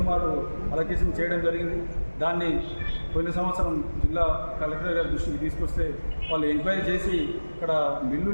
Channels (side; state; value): both; inverted; correlation -1.00